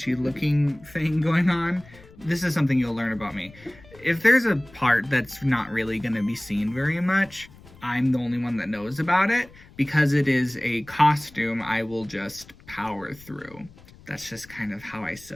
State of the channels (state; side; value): noise; left; rumble, 23 dB below the sound